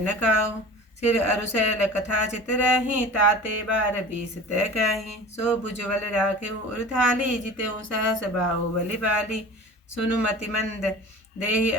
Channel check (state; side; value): normal; both; correlation 0.38